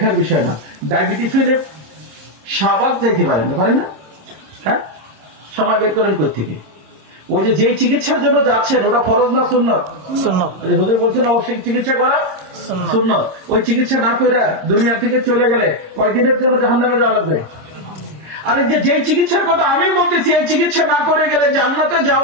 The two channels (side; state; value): left; late; 26 ms